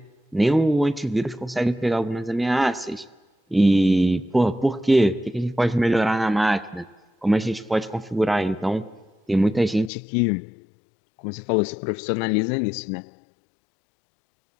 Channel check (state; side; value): drops out; right; at 9.9 s